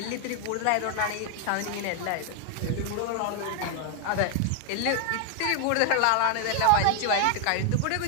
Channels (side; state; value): both; different; correlation 0.00